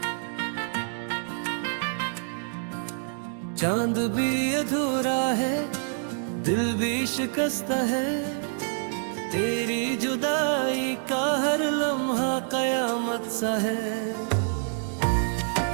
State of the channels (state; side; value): silent; left; 60 dB below the other